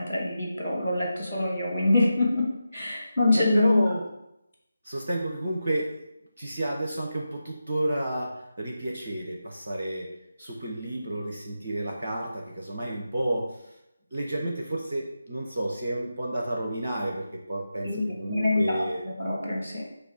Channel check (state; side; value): inverted; both; correlation -0.89